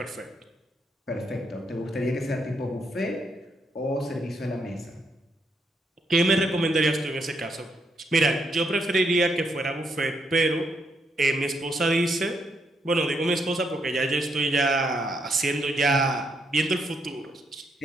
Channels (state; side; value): normal; both; correlation 0.76